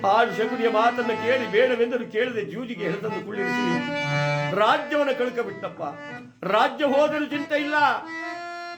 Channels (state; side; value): identical; both; correlation 1.00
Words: ಆ ಶಕುನಿಯ ಮಾತನ್ನು ಕೇಳಿ ಬೇಡವೆಂದರೂ ಕೇಳದೆ ಜೂಜಿಗೆ ಹೆಳೆತಂದು ಕುಳ್ಳಿರಿಸಿ ರಾಜ್ಯವನ್ನು ಕಳ್ಕಬಿಟ್ಟಪ್ಪ. ರಾಜ್ಯ ಹೋದರೂ ಚಿಂತೆ ಇಲ್ಲ,